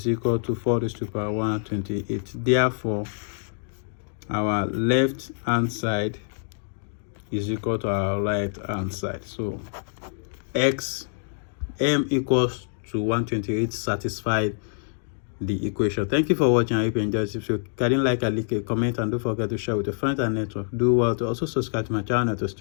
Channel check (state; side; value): silent; right; digital silence